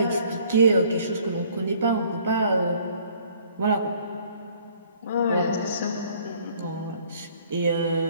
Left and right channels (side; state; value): both; inverted; correlation -0.58